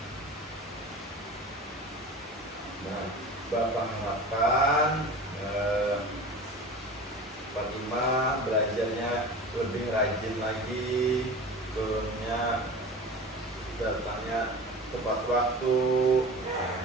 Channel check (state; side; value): normal; both; correlation 0.35